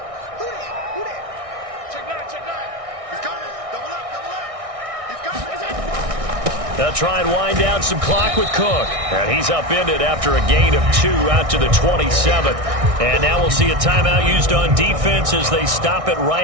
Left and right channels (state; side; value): late; left; 1.6 ms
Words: They'll try and wind down some clock with Cook. And he's upended after a gain of 2 out to the 27th. And now we'll see a timeout used on defense as they stop it